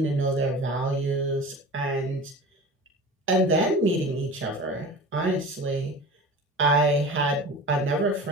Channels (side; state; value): both; normal; correlation 0.35